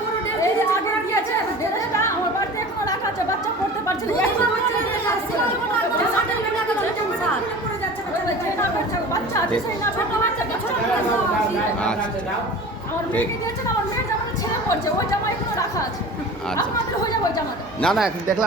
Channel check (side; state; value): both; normal; correlation 0.38